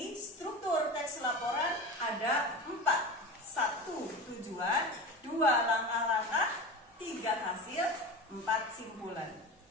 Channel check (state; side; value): normal; both; correlation 0.30